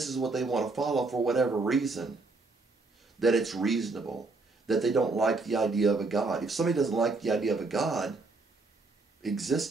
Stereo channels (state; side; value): quieter; left; 3.6 dB